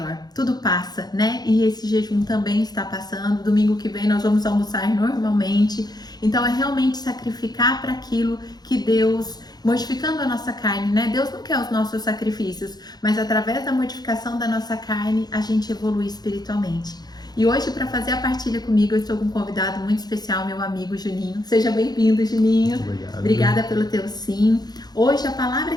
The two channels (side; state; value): right; late; 0.19 ms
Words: Tudo passa, né? E esse jejum também está passando. Domingo que vem nós vamos almoçar normalmente. Então é realmente sacrificar para aquilo que Deus, modificando a nossa carne, né? Deus não quer os nossos sacrifícios, mas através da modificação da nossa carne a gente evolui espiritualmente. E hoje, para fazer a partilha comigo, eu estou com um convidado muito especial, meu amigo Juninho. Seja bem-vindo, Juninho. Obrigado. Obrigada pelo teu sim. Hoje a palavra